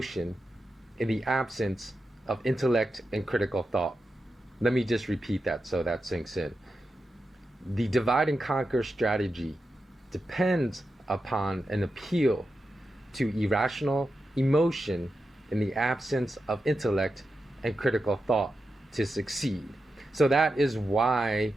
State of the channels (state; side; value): normal; both; correlation 0.89